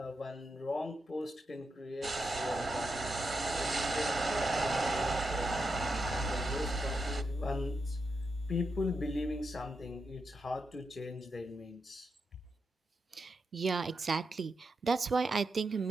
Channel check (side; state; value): both; normal; correlation 0.86